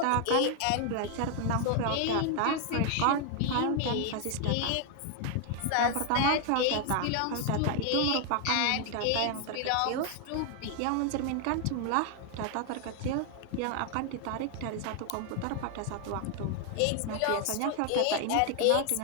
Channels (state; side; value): different; both; correlation 0.00